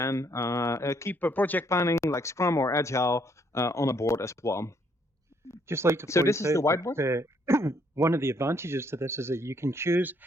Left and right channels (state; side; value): normal; both; correlation 0.69